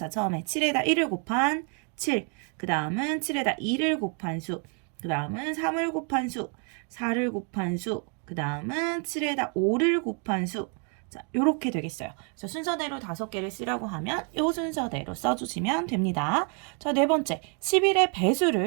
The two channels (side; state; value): left; quieter; 38.5 dB